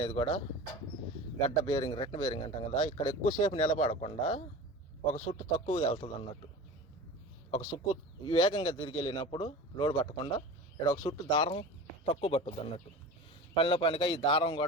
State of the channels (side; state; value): both; normal; correlation 0.34